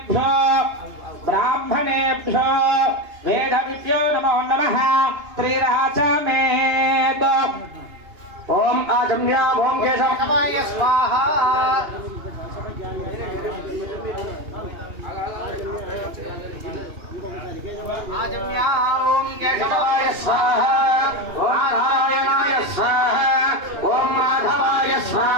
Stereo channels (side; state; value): left; late; 2.8 ms